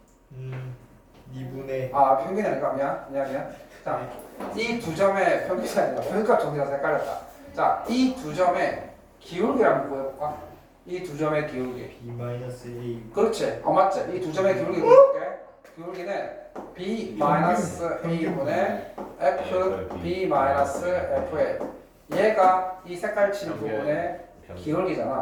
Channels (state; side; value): identical; both; correlation 1.00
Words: 2분의 평균이 아니라 미안. 자, 이 두 점의 평균이 아니라 평균값 정리라서 헷갈렸다. 자, 이 두 점의 기울기를 한번 구해볼까? 이 두 점의 기울기. B-A. 그렇지. 맞지? 이 두 점의 기울기 구해볼게. 기울기는 B-A분의 FB-FA. 얘가 이 색깔 친 부분의